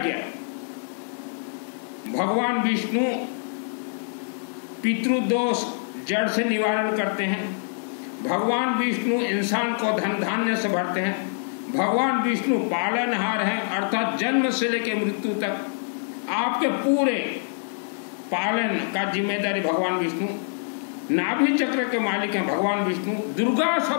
भगवान विष्णु पितृदोष जड़ से निवारण करते हैं। भगवान विष्णु इंसान को धन धान्य से भरते हैं। भगवान विष्णु पालनहार हैं, अर्थात जन्म से लेकर मृत्यु तक आपके पूरे पालन का जिम्मेदारी भगवान विष्णु। नाभि चक्र के मालिक हैं भगवान विष्णु। दुर्गा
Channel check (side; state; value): right; silent; digital silence